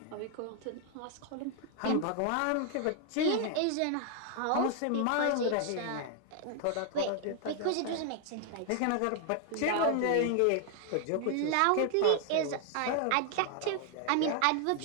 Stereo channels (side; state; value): both; different; correlation 0.00